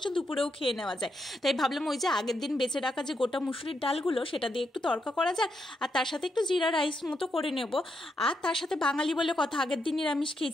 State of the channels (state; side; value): normal; both; correlation 0.81